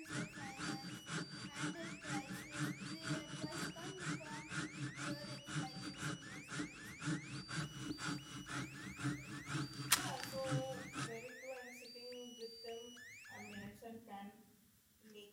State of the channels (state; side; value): identical; both; correlation 1.00